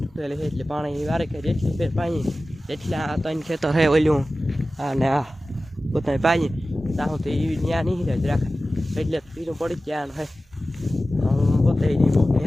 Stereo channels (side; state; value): both; normal; correlation 0.95